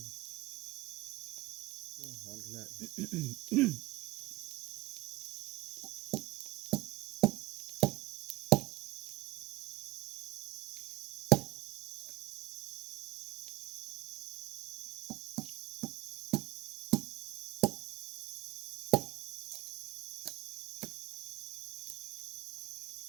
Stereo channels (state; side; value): quieter; left; 19.1 dB